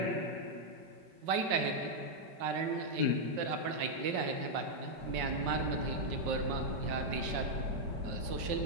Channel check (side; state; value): left; late; 5.5 ms